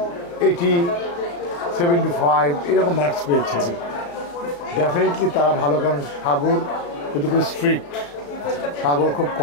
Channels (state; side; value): late; right; 35 ms